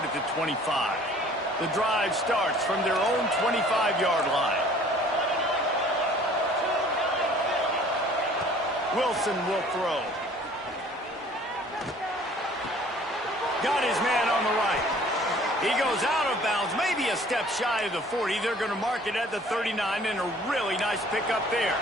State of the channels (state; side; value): normal; both; correlation 0.53